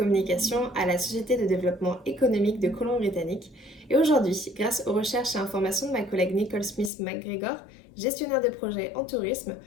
à la Société de développement économique de Colombie-Britannique. Et aujourd'hui, grâce aux recherches et informations de ma collègue Nicole Smith-McGregor, gestionnaire de projet en tourisme,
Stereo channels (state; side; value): drops out; right; at 6.9 s